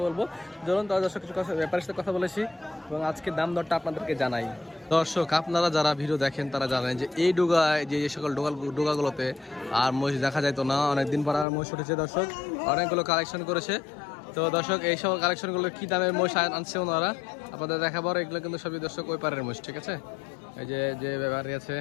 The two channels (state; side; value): drops out; right; at 11.5 s